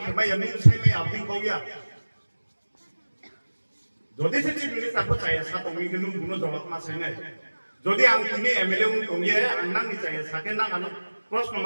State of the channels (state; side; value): inverted; both; correlation -1.00